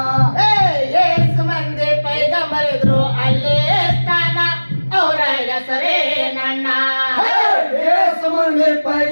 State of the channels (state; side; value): inverted; both; correlation -1.00